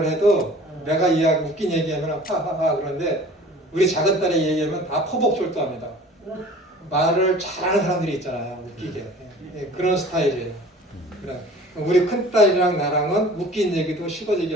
해도 내가 이야기 웃긴 얘기하면 하하하 그런데 우리 작은 딸이 얘기하면 다 포복절도합니다. 말을 잘하는 사람들이 있잖아요. 웃기게. 그런 스타일이에요. 그래. 우리 큰딸이랑 나랑은 웃긴 얘기도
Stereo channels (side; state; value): both; normal; correlation 0.46